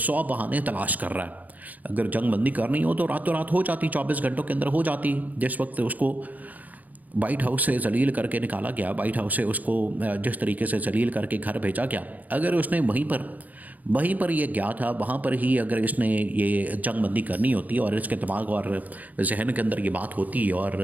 بہانے تلاش کر رہا ہے۔ اگر جنگ بندی کرنی ہو تو راتوں رات ہو جاتی، 24 گھنٹوں کے اندر ہو جاتی۔ جس وقت اس کو وائٹ ہاؤس سے ذلیل کر کے نکالا گیا، وائٹ ہاؤس سے اس کو جس طریقے سے ذلیل کر کے گھر بھیجا گیا، اگر اس نے وہیں پر یہ گیا تھا، وہاں پر ہی اگر اس نے یہ جنگ بندی کرنی ہوتی، اور اس کے دماغ اور ذہن کے اندر یہ بات ہوتی، اور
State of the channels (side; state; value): left; late; 0.079 ms